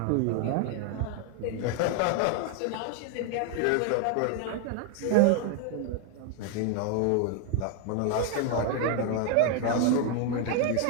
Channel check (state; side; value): different; both; correlation 0.01